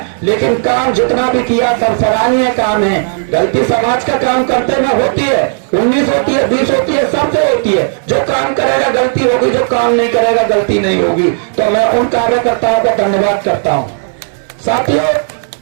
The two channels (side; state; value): left; silent; digital silence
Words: लेकिन काम जितना भी किया सब सराहनीय काम है। गलती समाज का काम करते में होती है, 19 होती है, 20 होती है, सबसे होती है। जो काम करेगा गलती होगी, जो काम नहीं करेगा गलती नहीं होगी। तो मैं उन कार्यकर्ताओं का धन्यवाद करता हूं। साथियों,